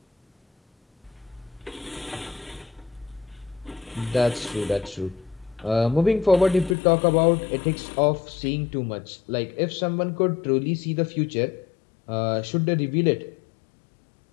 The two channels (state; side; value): drops out; right; at 6.8 s